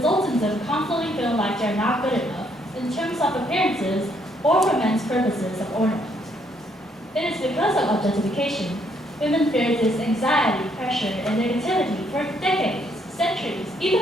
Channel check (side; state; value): both; normal; correlation 0.70